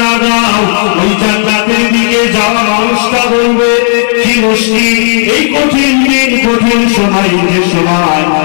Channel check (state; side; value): silent; right; digital silence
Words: দাও, ওই জান্নাতের দিকে যাওয়া মানুষটা বলবে কি মুশকিল, এই কঠিন দিন কঠিন সময়, যে সময়